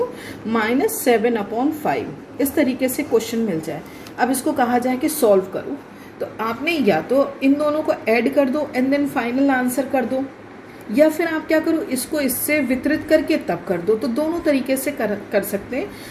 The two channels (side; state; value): both; identical; correlation 1.00